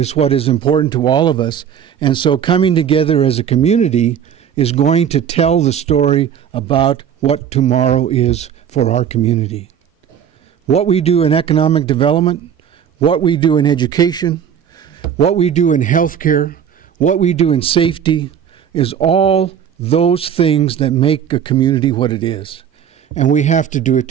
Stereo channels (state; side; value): quieter; left; 8.6 dB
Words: what is important to all of us. And so coming together as a community is going to tell the story about what tomorrow is for our community. What we do in economic development, what we do in education, what we do in healthcare, what we do in safety, is all those things that make a community what it is. And we have to do it